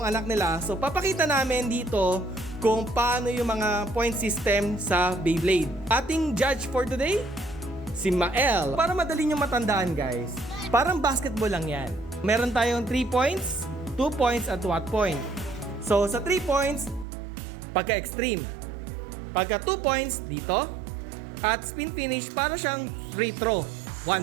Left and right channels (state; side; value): drops out; left; at 17.1 s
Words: anak nila. So, papakita namin dito kung paano yung mga point system sa Beyblade. Ating judge for today, si Mael. Para madali nyo matandaan, guys. Parang basketball lang yan. Meron tayong 3 points, 2 points, at 1 point. So, sa 3 points, pagka-extreme. Pagka 2 points, dito. At spin finish, para siyang free throw,